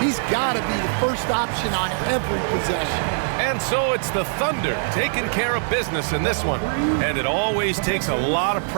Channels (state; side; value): silent; left; digital silence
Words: got to be the first option on every possession. And so it's the Thunder taking care of business in this one. And it always takes a lot of